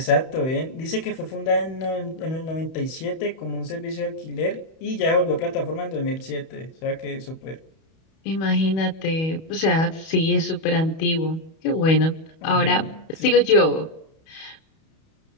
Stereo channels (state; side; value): late; right; 31 ms